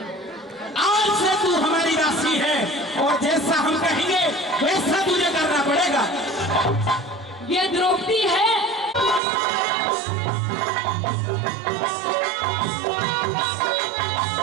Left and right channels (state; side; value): drops out; left; at 9.2 s